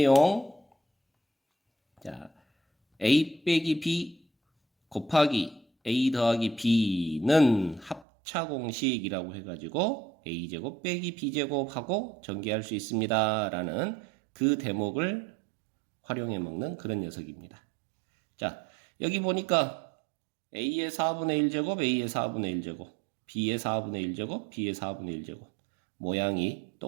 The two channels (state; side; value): drops out; left; at 8.1 s